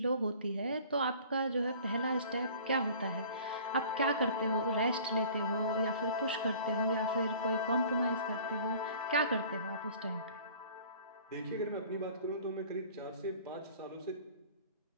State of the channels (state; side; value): inverted; both; correlation -0.47